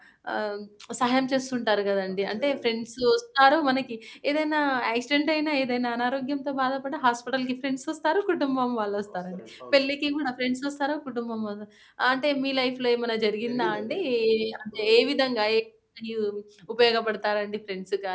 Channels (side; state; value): both; identical; correlation 1.00